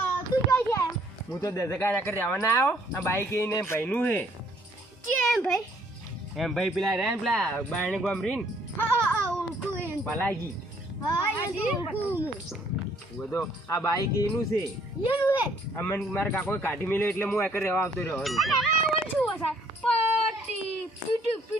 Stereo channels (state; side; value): normal; both; correlation 0.64